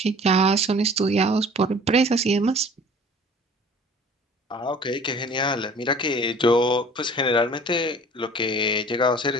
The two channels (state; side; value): normal; both; correlation 0.47